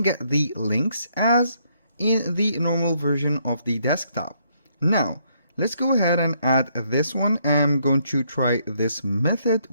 get the links as in the normal version of the desktop. Now, let's go ahead and add this one. I'm going to try this method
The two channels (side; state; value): both; inverted; correlation -0.71